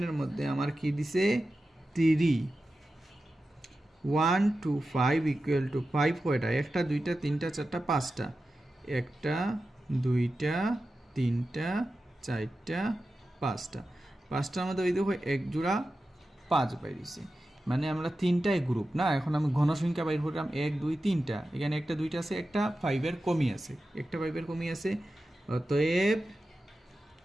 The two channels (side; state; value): both; normal; correlation 0.92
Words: মধ্যে আমার কি দিছে 3 1 2 5 ইকুয়াল টু 5 কয়টা একটা দুইটা তিনটা চারটা পাঁচটা একটা দুইটা তিনটা চারটা পাঁচটা পাঁচটার মধ্যে ওই দেখো এক জোড়া 5 বাইরেছে মানে আমরা তিনটাই গ্রুপ না এখন আমি ঘনসংখ্যা বাইর করলাম 1 2 3টা এখানে একটা দুইটা আছে একটা 5 এর কমই আছে একটা 5 এর কমই আছে অতএব